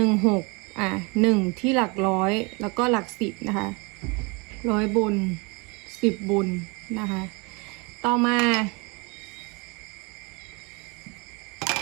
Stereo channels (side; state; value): left; quieter; 29.5 dB